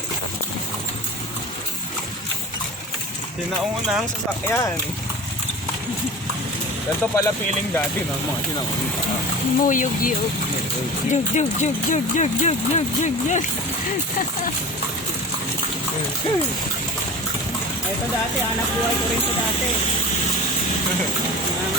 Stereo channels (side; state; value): both; normal; correlation 0.35